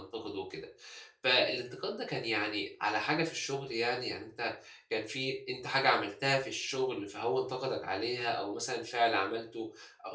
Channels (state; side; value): identical; both; correlation 1.00